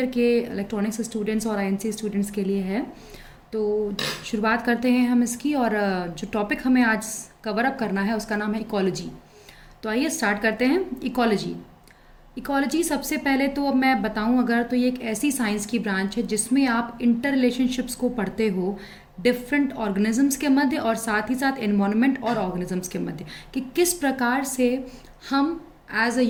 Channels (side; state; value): both; identical; correlation 1.00